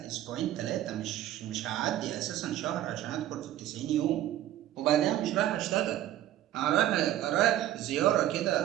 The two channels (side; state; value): left; quieter; 12.9 dB